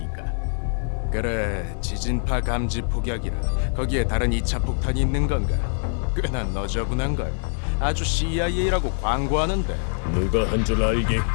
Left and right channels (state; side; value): silent; right; 63 dB below the other